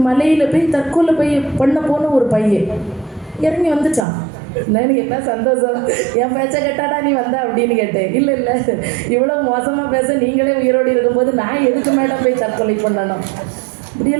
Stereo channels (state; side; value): drops out; left; at 4.0 s